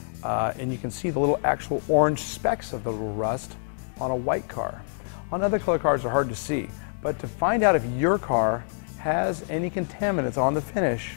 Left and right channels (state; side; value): silent; right; digital silence